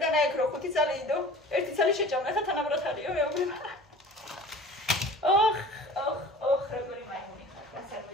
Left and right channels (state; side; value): normal; both; correlation 0.42